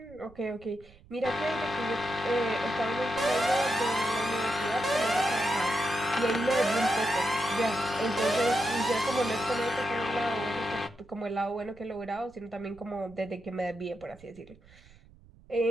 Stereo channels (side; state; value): right; noise; rumble, 24 dB below the sound